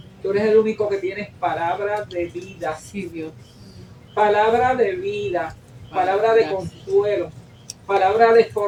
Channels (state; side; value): identical; both; correlation 1.00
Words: Tú eres el único que tienes palabra de vida. Sí, Dios. Palabra de vida. Palabra de consuelo. Palabra de